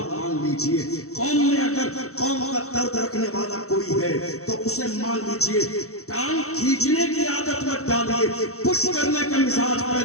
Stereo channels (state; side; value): late; right; 0.64 ms